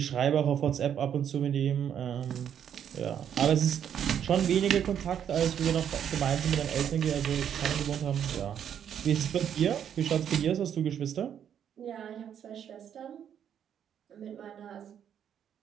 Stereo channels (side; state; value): left; quieter; 9.0 dB